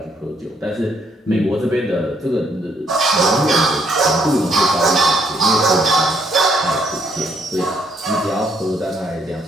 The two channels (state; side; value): normal; both; correlation 0.70